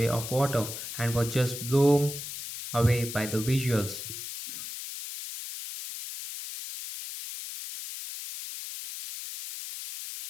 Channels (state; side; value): noise; left; hiss, 8 dB below the sound